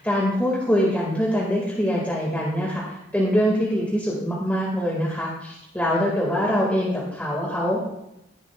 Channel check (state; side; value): normal; both; correlation 0.75